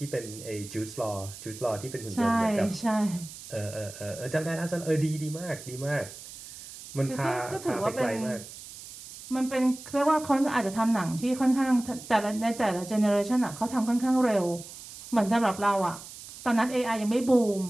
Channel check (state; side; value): noise; right; hiss, 15 dB below the sound